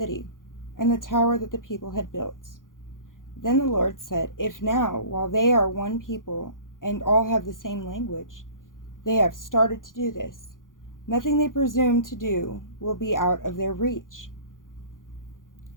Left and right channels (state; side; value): late; right; 0.90 ms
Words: and the tower that the people had built. Then the Lord said, "If now, while they are one people and all have the same language, they have started to do this, nothing they presume to do will be out of their reach.